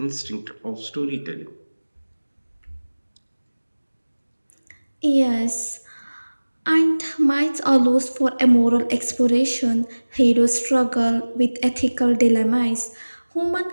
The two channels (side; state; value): both; inverted; correlation -1.00